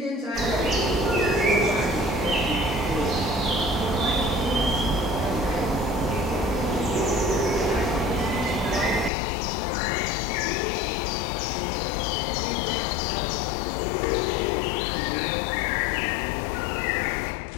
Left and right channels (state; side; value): drops out; right; at 9.1 s